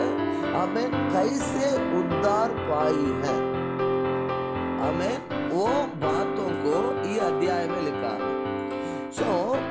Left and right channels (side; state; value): both; identical; correlation 1.00